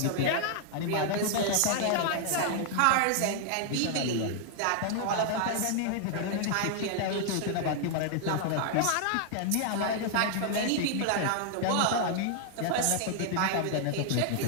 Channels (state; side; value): different; both; correlation 0.00